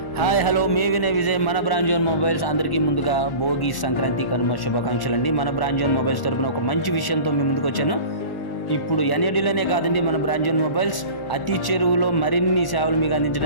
Hi hello మే వినయ్ విజయ్ మన brand zone mobiles అందరికీ ముందుగా భోగి సంక్రాంతి కనుమ శుభాకాంక్షలు అండి. మన బ్రాండ్ జోన్ మొబైల్స్ తరపున ఒక మంచి విషయంతో మీ ముందుకు వచ్చాను. ఇప్పుడు ఎన్ఏడిలోనే కాదండి, మన బ్రాండ్ జోన్ మొబైల్స్ అతి చెరువులో మరిన్ని సేవలు మీకు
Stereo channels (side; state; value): right; late; 1.4 ms